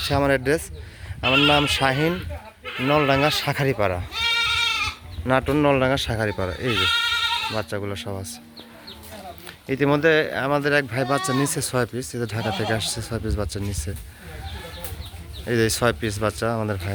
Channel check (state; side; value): identical; both; correlation 1.00